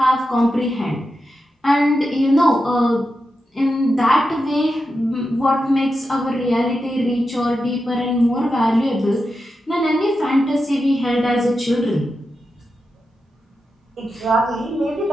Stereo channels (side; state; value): both; normal; correlation 0.89